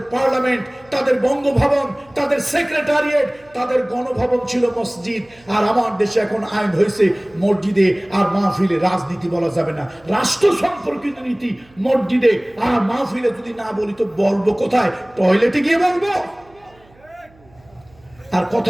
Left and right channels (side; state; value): right; noise; hum, 29 dB below the sound